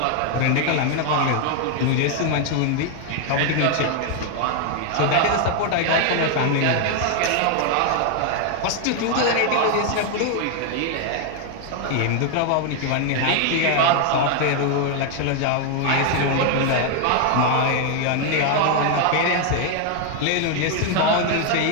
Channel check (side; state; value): both; different; correlation 0.01